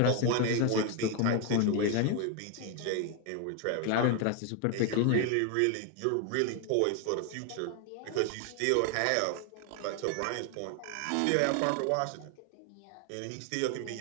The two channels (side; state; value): both; different; correlation 0.01